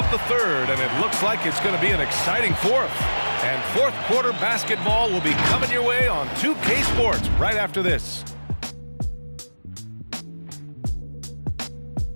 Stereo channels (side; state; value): both; inverted; correlation -1.00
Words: the third, and it looks like it's going to be an exciting fourth. And fourth quarter basketball will be coming your way on 2K Sports right after this.